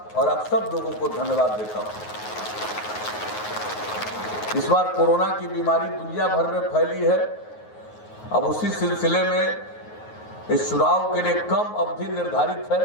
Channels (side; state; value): right; late; 9.4 ms